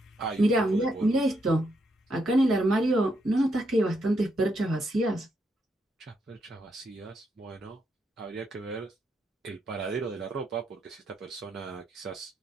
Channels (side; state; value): both; normal; correlation 0.79